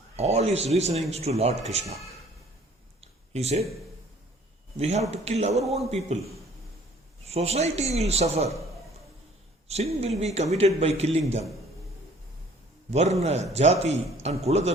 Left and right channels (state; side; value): normal; both; correlation 0.55